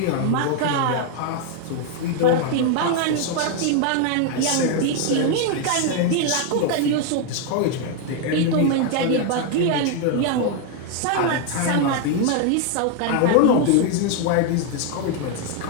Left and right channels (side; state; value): both; different; correlation 0.00